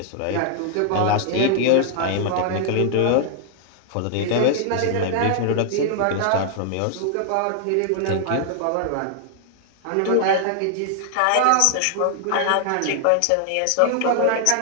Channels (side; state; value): both; different; correlation 0.00